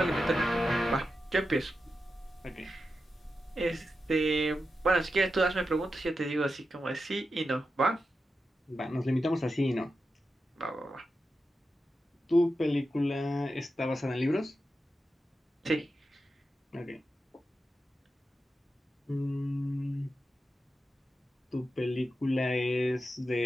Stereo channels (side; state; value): both; normal; correlation 0.90